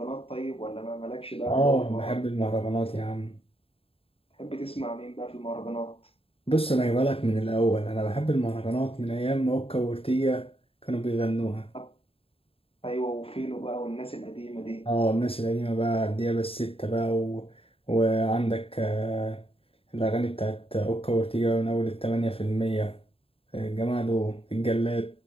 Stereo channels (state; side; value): late; right; 0.27 ms